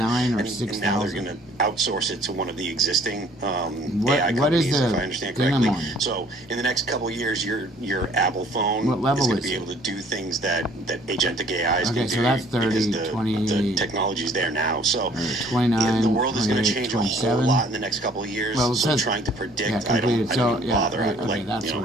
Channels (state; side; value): normal; both; correlation 0.57